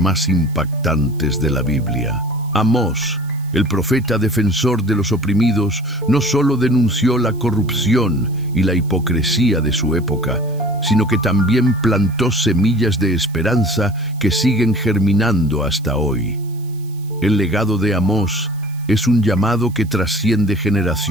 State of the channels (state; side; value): noise; right; hiss, 26 dB below the sound